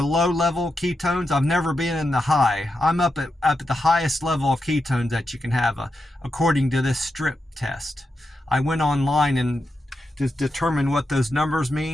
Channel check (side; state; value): both; normal; correlation 0.87